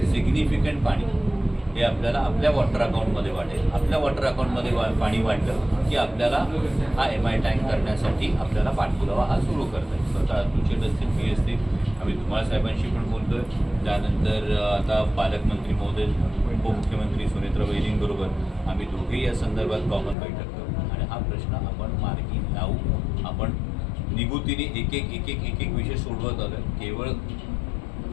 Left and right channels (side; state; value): right; drops out; at 20.2 s